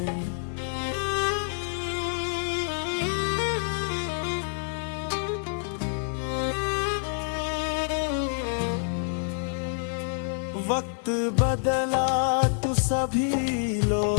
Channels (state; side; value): silent; right; digital silence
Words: वक्त बदला तो सभी